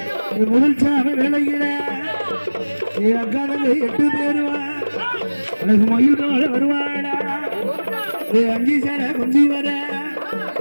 ஏ முதல் சாம வேலையில ஏ அக்காதங்க 8 பேருவா எனக்கு மயில் போல வருவாளா ஏ அஞ்சி சட குஞ்சி வர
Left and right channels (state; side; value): inverted; both; correlation -1.00